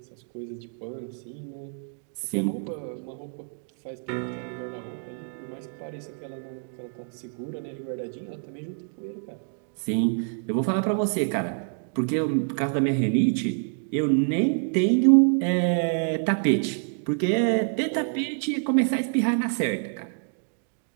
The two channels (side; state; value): left; silent; 60 dB below the other